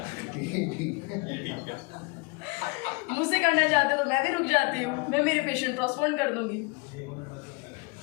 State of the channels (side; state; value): right; quieter; 29.6 dB